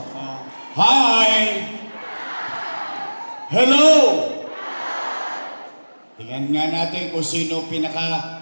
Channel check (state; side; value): inverted; both; correlation -1.00